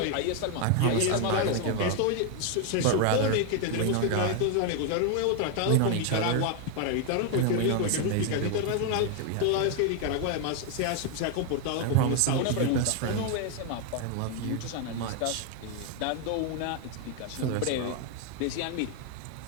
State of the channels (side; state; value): both; different; correlation 0.01